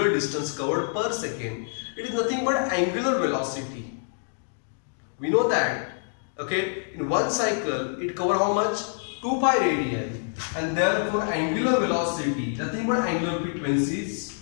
distance covered per second. It is nothing but angular velocity. We know that, okay, in one cycle it covers how much? 2 pi radian, and therefore angular velocity, nothing but angular frequency is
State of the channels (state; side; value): silent; right; digital silence